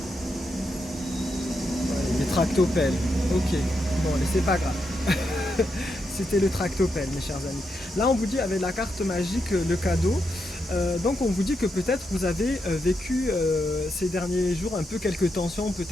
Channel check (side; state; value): both; normal; correlation 0.83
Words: Des tractopelles. Ok, bon, mais c'est pas grave. C'était le tractopelle, mes chers amis. Là, on vous dit avec la carte magique, le cadeau. Donc, on vous dit que peut-être vous avez vécu ces derniers jours un peu quelques tensions,